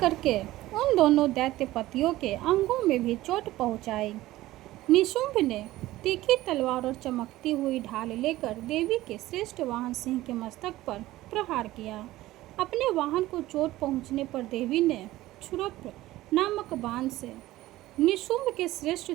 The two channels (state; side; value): quieter; left; 16.6 dB